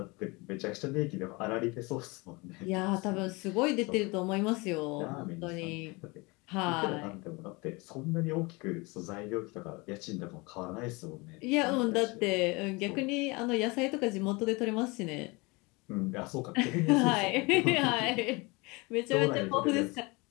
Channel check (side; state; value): right; quieter; 26.2 dB